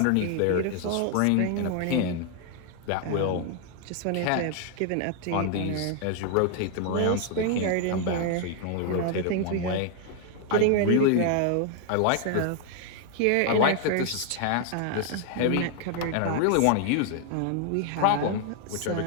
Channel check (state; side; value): different; both; correlation 0.00